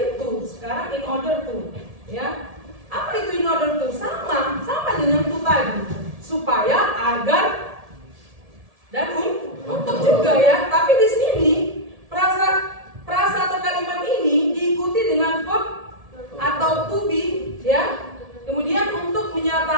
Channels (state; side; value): late; left; 1.7 ms